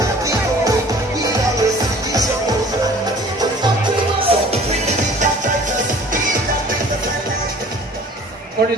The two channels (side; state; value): both; normal; correlation 0.49